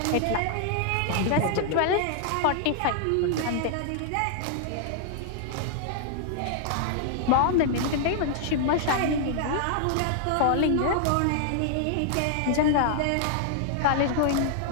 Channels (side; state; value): both; different; correlation -0.01